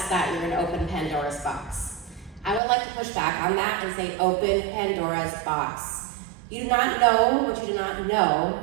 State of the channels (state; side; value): drops out; left; at 2.6 s